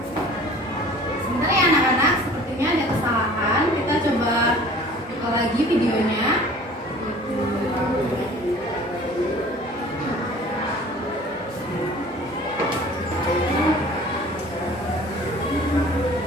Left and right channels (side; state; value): both; normal; correlation 0.47